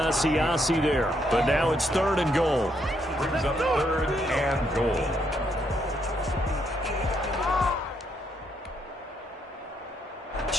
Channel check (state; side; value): normal; both; correlation 0.75